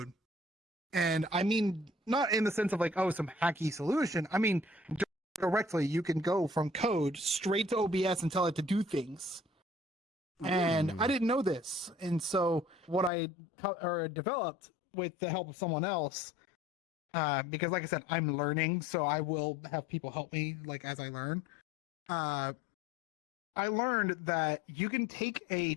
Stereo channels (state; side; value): drops out; right; at 13.1 s